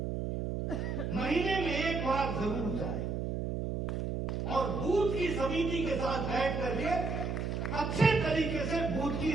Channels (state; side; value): noise; right; hum, 2 dB below the sound